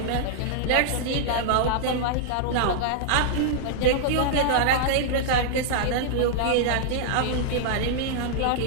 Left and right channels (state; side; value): different; both; correlation -0.01